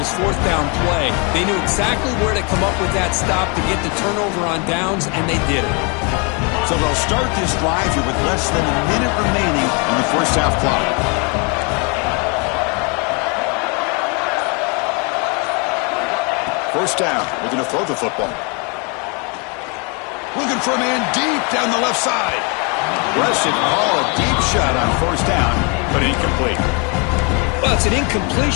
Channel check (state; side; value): quieter; right; 33.5 dB